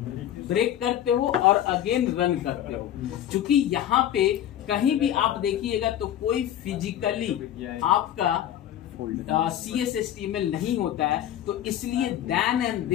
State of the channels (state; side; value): quieter; right; 11.4 dB